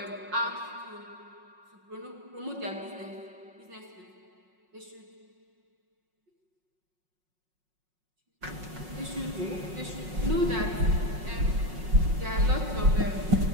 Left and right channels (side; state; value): left; late; 5.5 ms